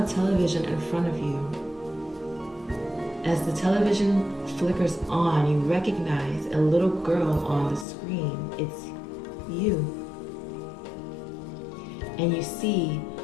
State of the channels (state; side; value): drops out; right; at 7.9 s